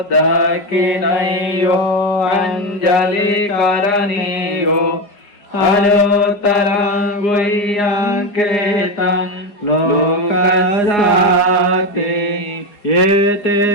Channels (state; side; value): late; right; 4.9 ms